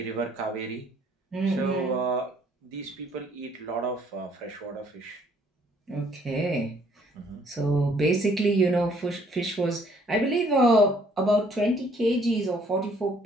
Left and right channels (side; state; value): both; normal; correlation 0.63